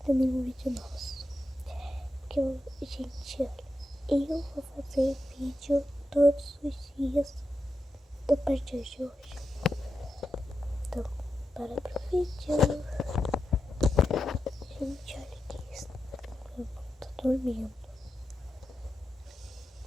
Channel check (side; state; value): both; normal; correlation 0.88